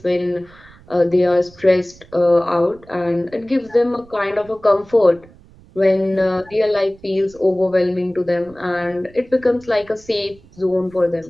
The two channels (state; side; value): noise; right; rumble, 25 dB below the sound